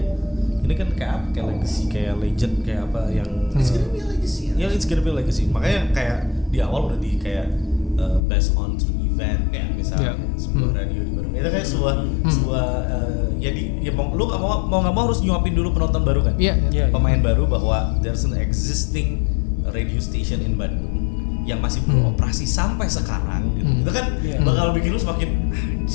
Ini kan kayak apa? Kayak legacy, kayak legend, kayak apa yang it's gonna be a legacy. Ya, it's gonna be a legacy. Makanya kayak di awal udah di kayak based on true event kayak misalnya sebuah radio di baru. Itu kayak sebuah ya lu nggak mau harus nyuapin dulu penonton baru kan? Iya, iya. Pemain baru bahwa there's an existing radio station in Bandung yang masih beroperasi sampai sekarang gitu. Itu kan bakal bikin lu semakin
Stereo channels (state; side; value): drops out; right; at 8.2 s